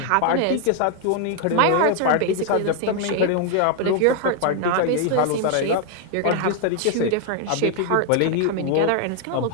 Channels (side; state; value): both; different; correlation 0.00